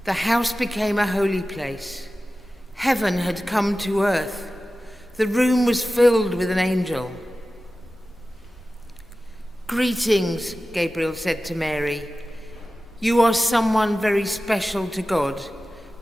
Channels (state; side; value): normal; both; correlation 0.95